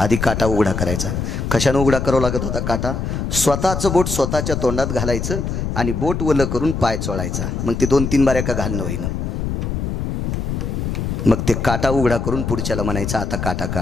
काटा उघडा करायचा कशाने उघडा करावा लागत होता काटा स्वतःचं बोट स्वतःच्या तोंडात घालायचं आणि बोट वलं करून पाय चोळायचा मग ते 2-3 बाऱ्या का घालणं होईना मग ते काटा उघडा करून पुढच्याला म्हणायचा आता काटा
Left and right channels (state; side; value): noise; left; rumble, 2 dB below the sound